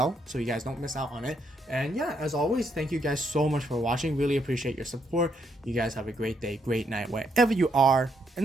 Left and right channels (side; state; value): both; normal; correlation 0.76